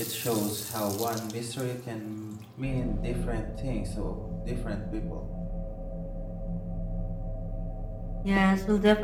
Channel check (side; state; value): both; identical; correlation 1.00